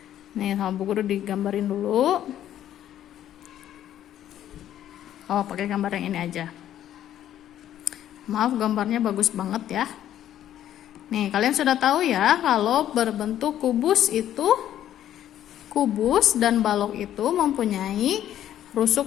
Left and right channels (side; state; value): right; quieter; 11.5 dB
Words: Nih, sama Bu Guru digambarin dulu. Oh, pakai gambar yang ini aja. Maaf, gambarnya bagus banget ya. Nih, kalian sudah tahu ya kalau berbentuk kubus itu, kubus dan balok itu mempunyai